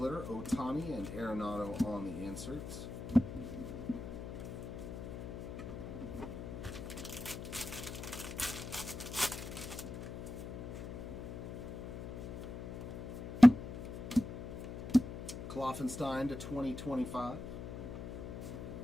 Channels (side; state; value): left; noise; hum, 7 dB below the sound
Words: Ohtani and Arenado on the inserts. Kloffenstein to 2025.